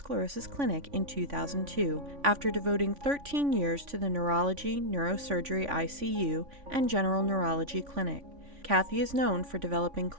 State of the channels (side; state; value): left; late; 3.5 ms